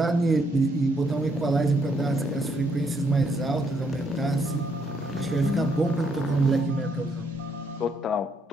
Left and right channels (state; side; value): normal; both; correlation 0.73